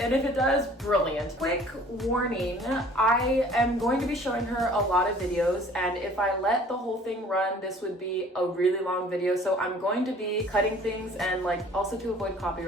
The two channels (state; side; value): normal; both; correlation 0.52